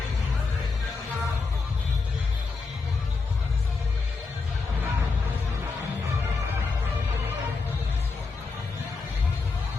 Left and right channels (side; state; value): right; quieter; 4.3 dB